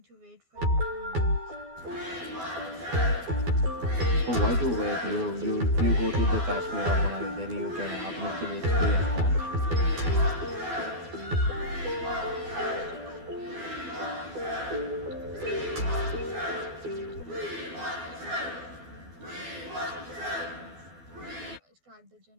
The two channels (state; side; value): late; left; 12 ms